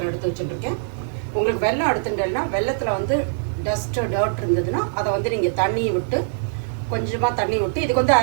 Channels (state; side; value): silent; left; 64 dB below the other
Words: எடுத்து வச்சுட்டுருக்கேன். உங்களுக்கு வெல்லம் எடுத்துட்டேன்னா வெள்ளத்தில் டர்ட் இருந்ததுன்னா அதை நீங்கள் தண்ணியை விட்டு, கொஞ்சமாக தண்ணி விட்டு, இதுக்கு